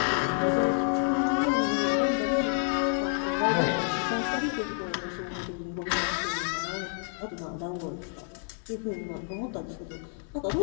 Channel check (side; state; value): right; silent; 56 dB below the other